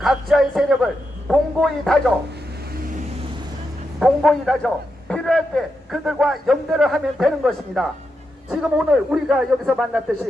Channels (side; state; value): both; normal; correlation 0.86